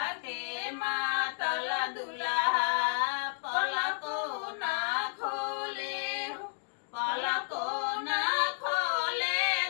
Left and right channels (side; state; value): right; silent; digital silence